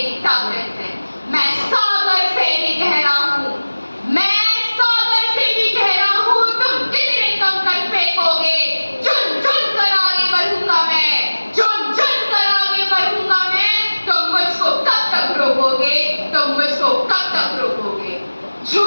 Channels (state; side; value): inverted; both; correlation -1.00